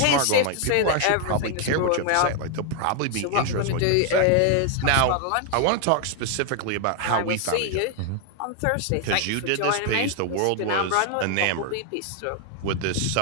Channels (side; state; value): both; different; correlation 0.00